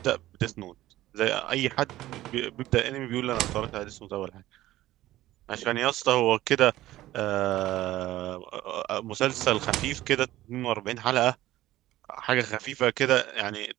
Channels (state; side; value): quieter; left; 15.4 dB